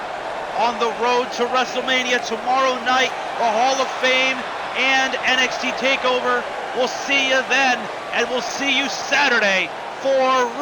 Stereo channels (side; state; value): both; identical; correlation 1.00